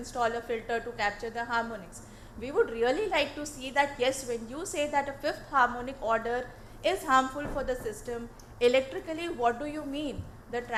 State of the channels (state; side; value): identical; both; correlation 1.00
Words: a filter to capture the harmonics. We would really like to see that, yes, when you say that a 5th harmonic order is harmful for the system, electrically, what do you mean? The